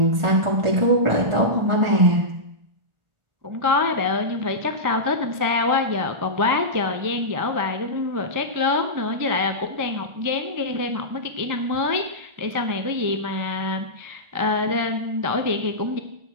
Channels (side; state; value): left; late; 1.4 ms